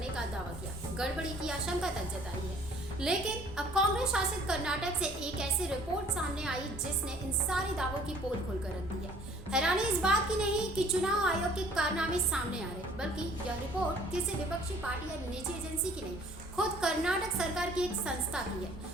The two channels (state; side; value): normal; both; correlation 0.55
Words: का दावा किया, गड़बड़ी की आशंका तक जताई है। लेकिन अब कांग्रेस शासित कर्नाटक से एक ऐसी रिपोर्ट सामने आई जिसने इन सारे दावों की पोल खोलकर रख दी है। हैरानी इस बात की नहीं कि चुनाव आयोग के कारनामे सामने आ रहे, बल्कि यह रिपोर्ट किसी विपक्षी पार्टी या निजी एजेंसी की नहीं, खुद कर्नाटक सरकार की एक संस्था की